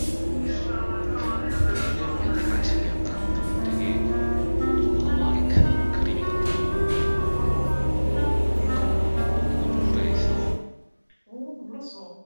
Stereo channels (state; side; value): inverted; both; correlation -1.00